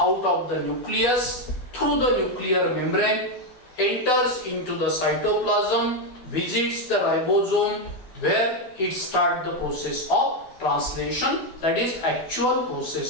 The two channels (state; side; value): late; right; 12 ms